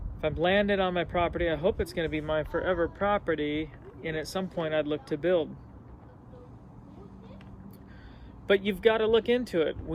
if I'm landed on my property, I hope it's going to be my forever property, and at some point I'd look to build. But you've got to look into it.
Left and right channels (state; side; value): identical; both; correlation 1.00